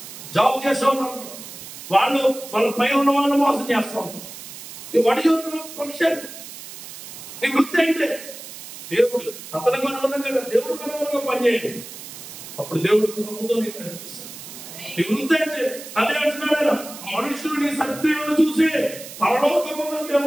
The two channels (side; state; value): right; noise; hiss, 13 dB below the sound